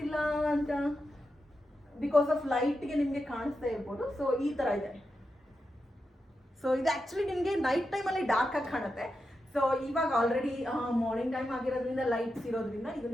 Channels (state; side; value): normal; both; correlation 0.88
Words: ಅಂತ ಬಿಕಾಸ್ ಆಫ್ ಲೈಟ್ಗೆ ನಿಮಗೆ ಕಾಣಿಸ್ತಾ ಇರ್ಬೋದು. ಸೊ ಈ ಥರ ಇದೆ. ಸೊ ಇದು ಆ್ಯಕ್ಚುಲಿ ನಿಮಗೆ ನೈಟ್ ಟೈಮಲ್ಲಿ ಡಾರ್ಕ್ ಆಗಿ ಕಾಣುತ್ತೆ. ಸೊ ಇವಾಗ ಆಲ್ರೆಡಿ ಮಾರ್ನಿಂಗ್ ಟೈಮ್ ಆಗಿರೋದ್ರಿಂದ ಲೈಟ್ಸ್ ಇರೋದ್ರಿಂದ ಇದು